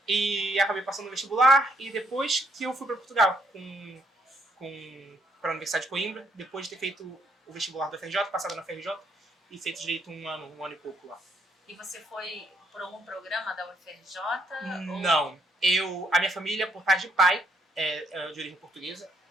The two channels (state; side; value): normal; both; correlation 0.69